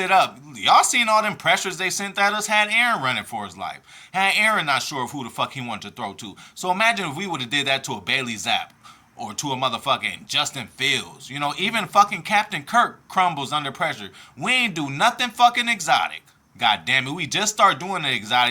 up. Y'all seen all them pressures they sent at us? Had Aaron running for his life. Had Aaron not sure of who the fuck he wanted to throw to. So imagine if we would have did that to a Bailey Zapp or to a motherfucking Justin Fields. You know, even fucking Captain Kirk crumbles under pressure. We ain't do nothing fucking exotic. God damn it, we just start doing the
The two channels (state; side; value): identical; both; correlation 1.00